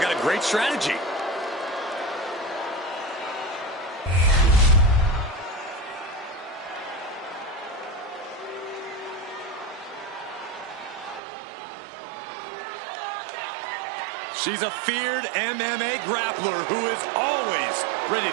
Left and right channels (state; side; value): drops out; left; at 11.2 s